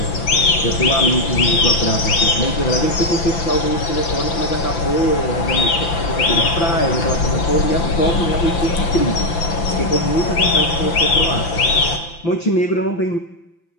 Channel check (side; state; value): right; late; 5.9 ms